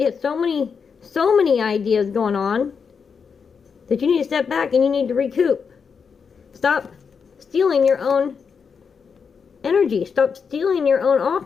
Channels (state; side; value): quieter; right; 6.0 dB